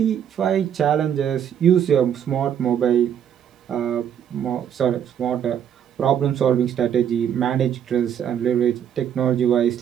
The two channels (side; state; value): left; quieter; 9.1 dB